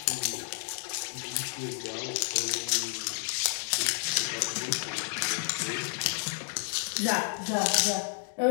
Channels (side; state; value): right; silent; digital silence